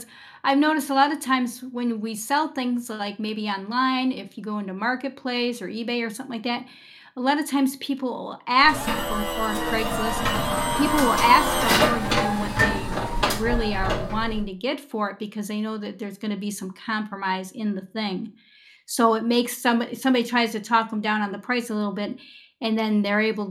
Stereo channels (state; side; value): identical; both; correlation 1.00